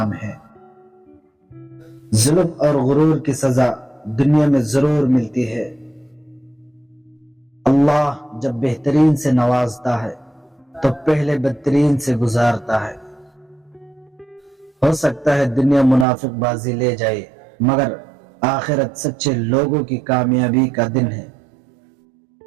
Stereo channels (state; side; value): drops out; left; at 16.1 s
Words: ہے۔ ظلم اور غرور کی سزا دنیا میں ضرور ملتی ہے۔ اللہ جب بہترین سے نوازتا ہے تو پہلے بدترین سے گزارتا ہے۔ ہو سکتا ہے دنیا منافق بازی لے جائے، مگر آخرت سچے لوگوں کی کامیابی کا دن ہے۔